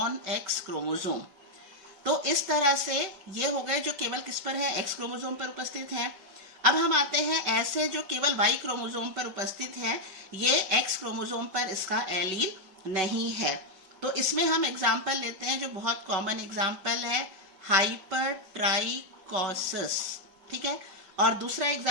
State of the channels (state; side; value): late; left; 5.3 ms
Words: X chromosome. तो इस तरह से ये हो गए जो केवल किस पर है, एक्स क्रोमोसोम पर उपस्थित है। अब हम आते हैं ऐसे जो केवल वाई क्रोमोसोम पर उपस्थित है, ये एक्स क्रोमोसोम पर इसका एलील नहीं है। तो इसमें हम एग्जाम्पल लेते हैं जो बहुत कॉमन एग्जाम्पल है, हाइपरट्राइकोसिस, ठीक है। और दूसरा